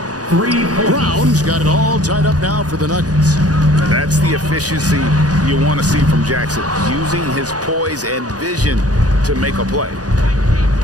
Brown's got it all tied up now for the Nuggets. That's the efficiency you want to see from Jackson, using his poise and vision to make a play.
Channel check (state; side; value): late; left; 0.68 ms